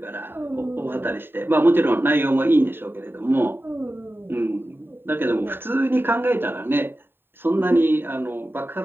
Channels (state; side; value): late; left; 0.10 ms